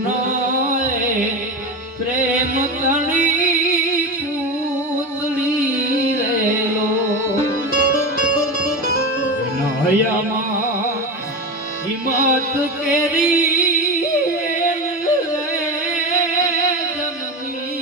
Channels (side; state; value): both; normal; correlation 0.21